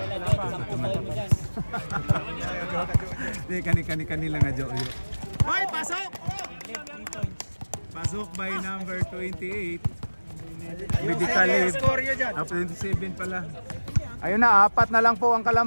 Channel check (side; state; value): both; inverted; correlation -1.00